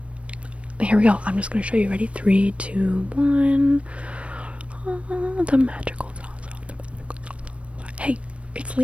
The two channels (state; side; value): late; left; 0.062 ms